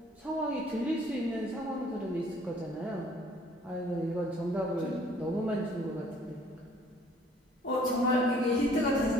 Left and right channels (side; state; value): both; normal; correlation 0.57